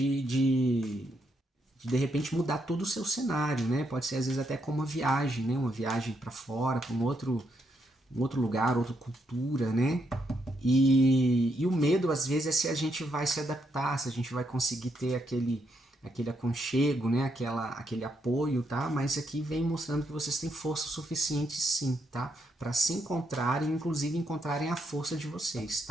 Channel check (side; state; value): both; normal; correlation 0.78